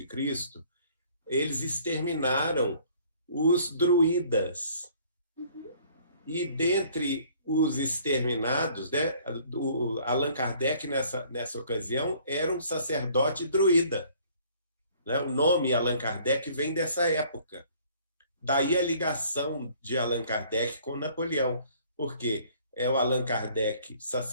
eles exterminaram os druidas. E dentre os exterminados, né, Allan Kardec, nessa ocasião, era um sacerdote druida. Né? O nome Allan Kardec vem dessa época. Daí a ligação de Allan Kardec com Napoleão, porque é o Allan Kardec,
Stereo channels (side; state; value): both; inverted; correlation -0.57